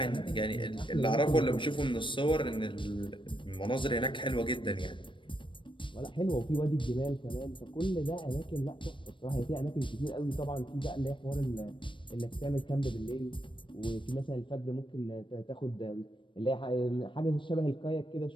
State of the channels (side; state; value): right; late; 0.24 ms